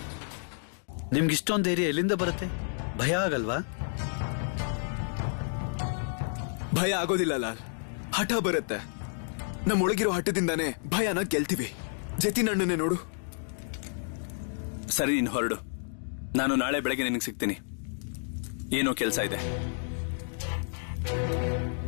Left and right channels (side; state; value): right; silent; digital silence